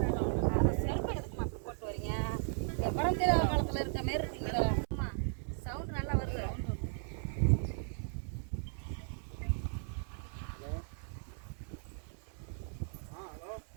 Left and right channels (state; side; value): silent; left; 54 dB below the other